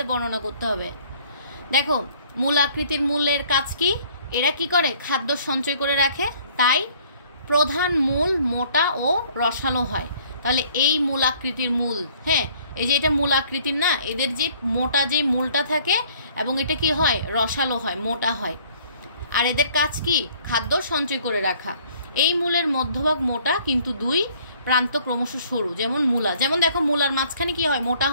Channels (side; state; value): both; inverted; correlation -0.58